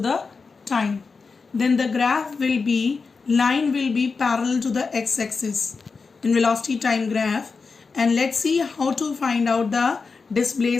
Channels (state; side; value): quieter; right; 4.7 dB